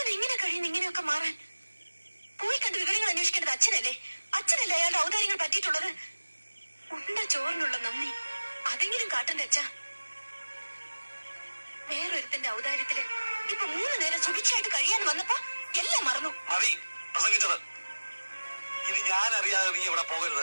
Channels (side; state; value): both; inverted; correlation -1.00